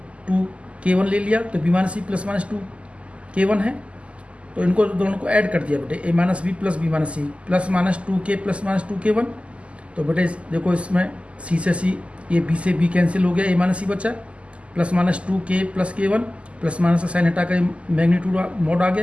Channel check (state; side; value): late; left; 0.058 ms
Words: 2k1 ले लिया तो बी माइनस सी प्लस माइनस 2k1 है। तो इनको दोनों को ऐड कर दिया बेटे, a minus B plus b minus C plus minus 2k plus minus 2k1। तो बेटे देखो इसमें सी से सी, ये बी से बी कैंसिल हो गया, ए माइनस सी बचा, plus minus 2k plus k1, plus minus का साइन हटा कर मैग्नीट्यूड मॉड आ